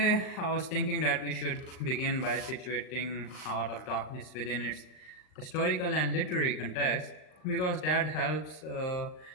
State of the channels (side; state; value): right; late; 39 ms